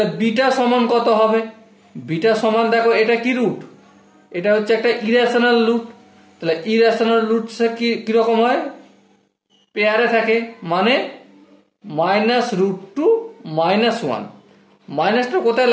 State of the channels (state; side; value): identical; both; correlation 1.00